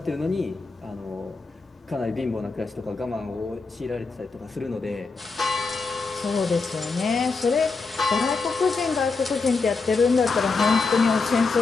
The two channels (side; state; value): right; quieter; 4.2 dB